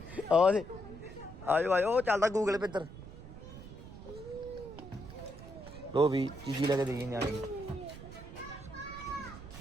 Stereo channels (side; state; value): right; noise; rumble, 14 dB below the sound